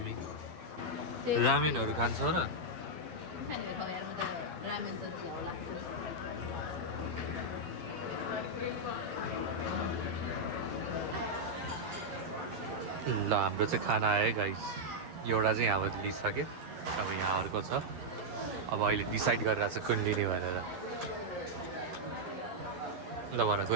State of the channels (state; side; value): late; left; 12 ms